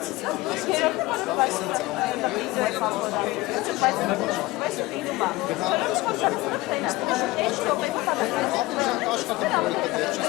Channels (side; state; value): right; quieter; 20.0 dB